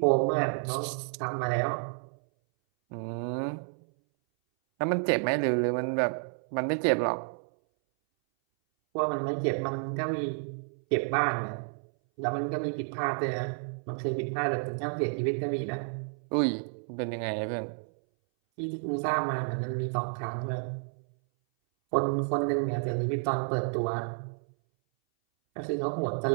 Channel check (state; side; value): silent; left; 58 dB below the other